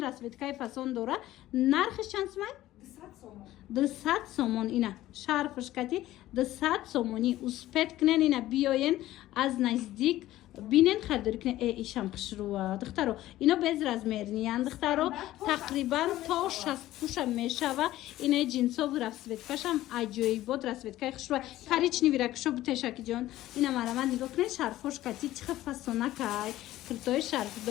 расветкаи фасон дора нархиш чанд сомон 200 сомон ина шарфашкати 200 сомони успет кунен ина биёен аз наздик бинен харидорӣ кунен ишам хушрӯа духтаро ино без размерниян духтаро тақрибан то 60 пуша мешава ина ҷинсову расветкашам аҷоибот расветкаи хушрӯа коричневи ракушо бутешакиҷон ина марамат нигоҳ кунен шарфошкати чиха фасонакай киртои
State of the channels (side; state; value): right; quieter; 15.1 dB